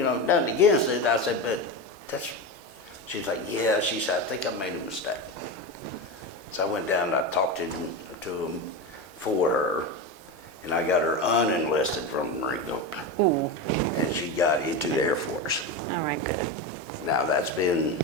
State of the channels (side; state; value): left; late; 3.4 ms